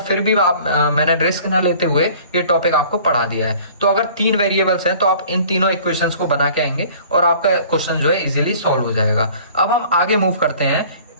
भी मैंने रिस्क ना लेते हुए ये टॉपिक आपको पढ़ा दिया है। तो अगर 3 वेरिएबल्स हैं तो आप इन तीनों इक्वेशंस को बना के आएंगे और आपका क्वेश्चन जो है इजीली सॉल्व हो जाएगा। अब हम आगे मूव करते हैं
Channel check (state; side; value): inverted; both; correlation -0.49